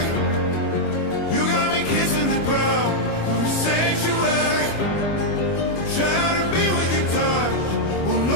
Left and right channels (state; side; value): late; right; 25 ms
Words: You got me kissing the ground of a sanctuary, trying to be with your touch. Oh